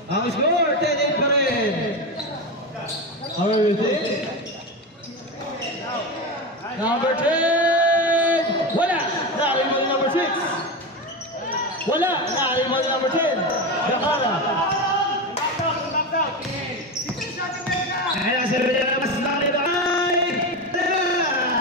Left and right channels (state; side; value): normal; both; correlation 0.18